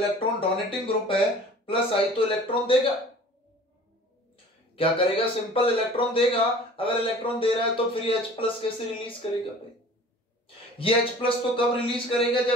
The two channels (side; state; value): both; normal; correlation 0.45